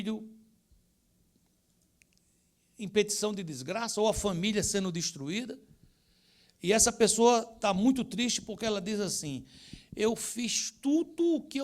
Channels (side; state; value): both; identical; correlation 1.00